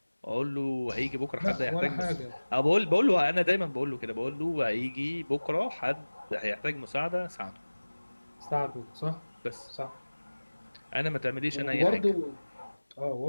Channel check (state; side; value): inverted; both; correlation -1.00